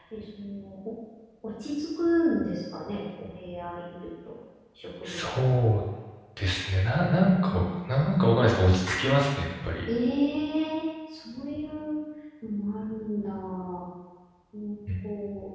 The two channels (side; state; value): both; identical; correlation 1.00